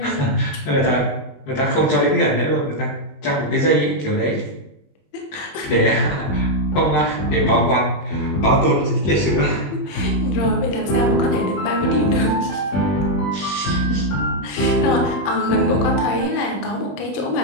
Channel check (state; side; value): late; right; 20 ms